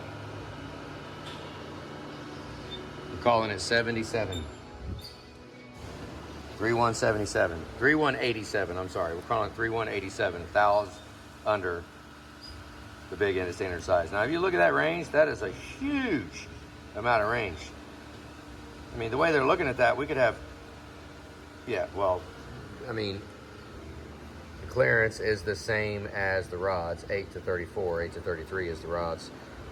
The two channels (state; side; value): identical; both; correlation 1.00